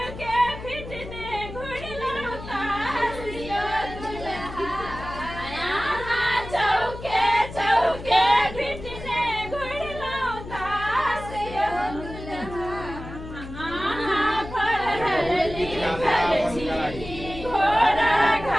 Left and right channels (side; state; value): left; noise; hum, 12 dB below the sound